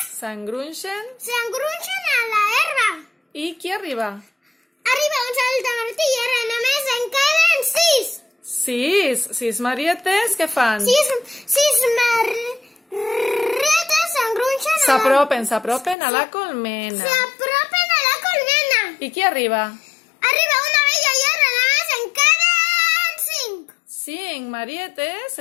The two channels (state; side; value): drops out; right; at 16.0 s